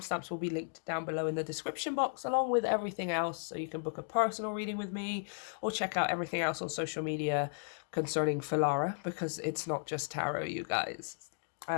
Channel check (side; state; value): right; silent; digital silence